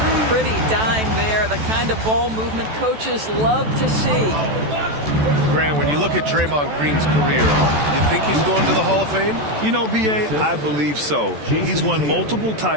Pretty dime there. The kind of ball movement coaches love to see. Grant, when you look at Draymond Green's career, you think he's going to the Hall of Fame? You know, B.A., I believe so. He's won multiple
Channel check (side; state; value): left; late; 14 ms